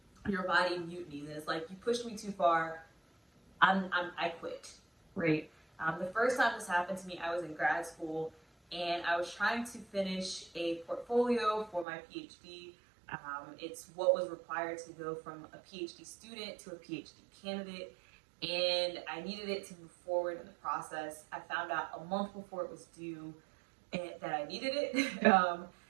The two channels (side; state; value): left; drops out; at 11.9 s